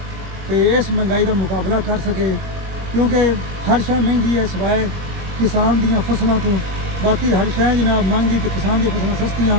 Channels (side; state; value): left; late; 21 ms